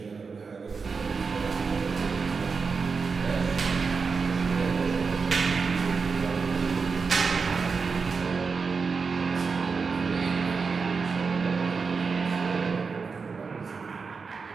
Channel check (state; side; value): quieter; left; 5.0 dB